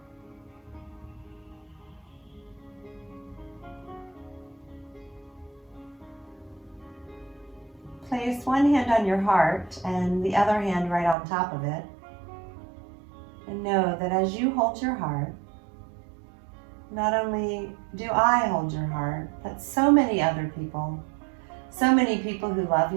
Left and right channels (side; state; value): left; drops out; at 11.2 s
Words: Place one hand on your heart and the other hand right on top of it. And know that as you hold your heart, not only do I hold your heart, but so many other people, so many people who love